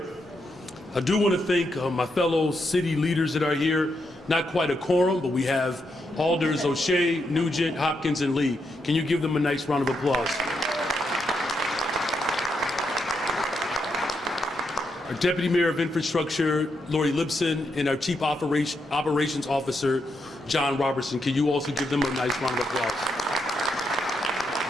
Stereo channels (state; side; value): normal; both; correlation 0.81